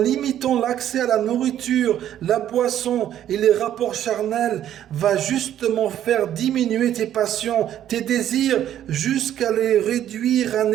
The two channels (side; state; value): left; quieter; 11.2 dB